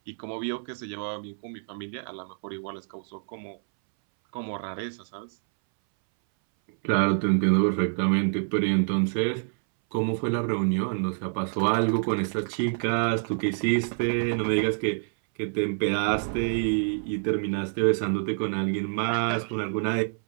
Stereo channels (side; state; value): left; silent; 60 dB below the other